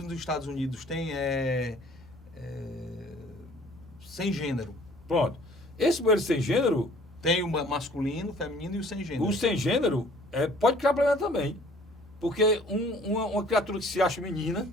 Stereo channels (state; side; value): normal; both; correlation 0.54